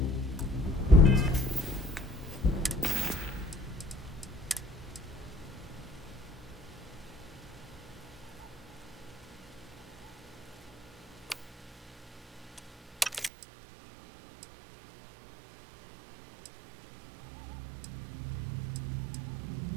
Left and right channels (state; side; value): drops out; left; at 13.3 s